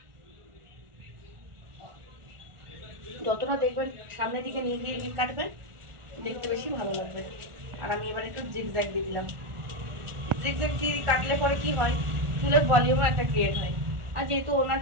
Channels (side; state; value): left; late; 1.4 ms